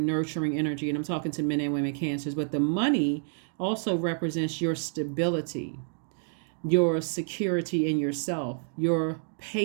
energy. And I'm talking to men and women Cancers. But the money also represents your stability, your security in yourself, your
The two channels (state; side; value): silent; left; digital silence